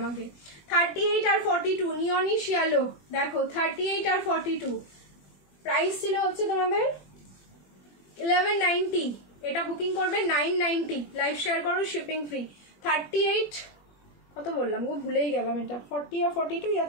38 আর 42 নিয়নিশ ইয়েলো, দেখো 38 আর 42 প্রাইস ছিল হচ্ছে তোমাদের 1190, এটা বুকিং করবে 990, লাইভ শেয়ার করো, শিপিং ফ্রি। 38 কত বললাম গো, ভুলেই গেলাম, এটা 40 আর 42 ইয়া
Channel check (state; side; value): late; right; 21 ms